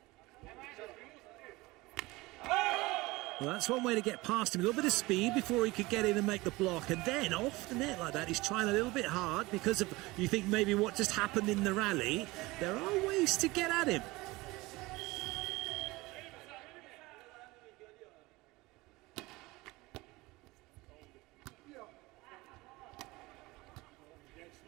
Well, that's one way to get past him. A little bit of speed before he could get in and make the block. And then off the net like that, he's trying a little bit hard because of, you think maybe what just happened in the rally. There are ways to get at him.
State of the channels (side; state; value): left; quieter; 21.3 dB